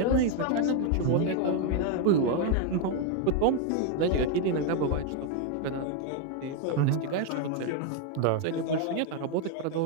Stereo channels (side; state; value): both; different; correlation 0.01